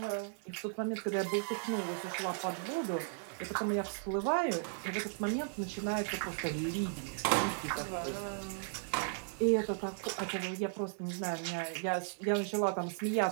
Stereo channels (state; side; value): silent; left; digital silence